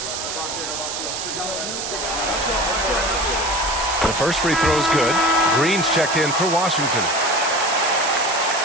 The first free throw is good. Green's checked in for Washington.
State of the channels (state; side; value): noise; right; hiss, 5 dB below the sound